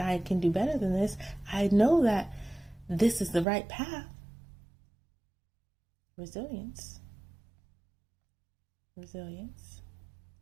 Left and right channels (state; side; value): drops out; left; at 3.5 s